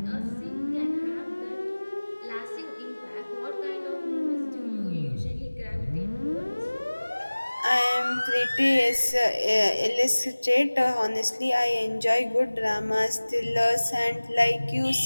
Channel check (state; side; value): inverted; both; correlation -1.00